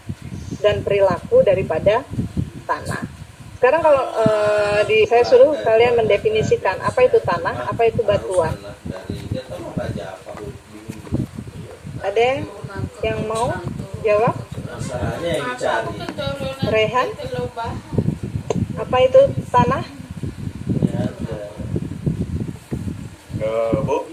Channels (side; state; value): both; identical; correlation 1.00